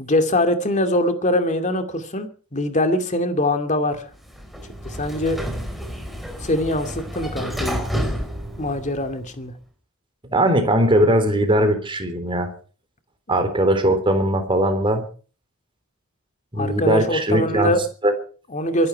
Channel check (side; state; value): both; normal; correlation 0.35